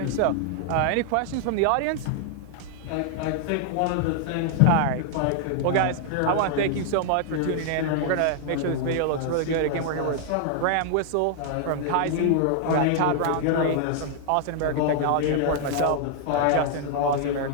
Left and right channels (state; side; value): different; both; correlation 0.00